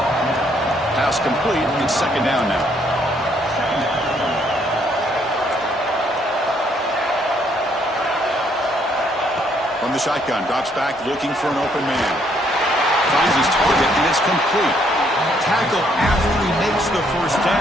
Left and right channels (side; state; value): both; normal; correlation 0.69